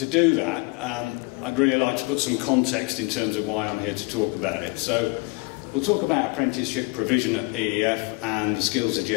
do that, I'd really like to put some context in terms of why I'm here to talk about it. So we'll talk about apprenticeship provision at EEF and the skills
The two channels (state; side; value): quieter; right; 28.7 dB